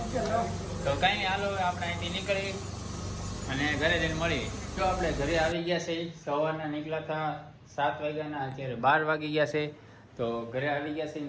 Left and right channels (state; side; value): identical; both; correlation 1.00